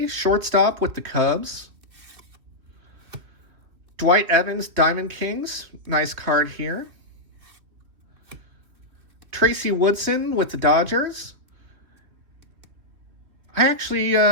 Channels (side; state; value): left; late; 2.9 ms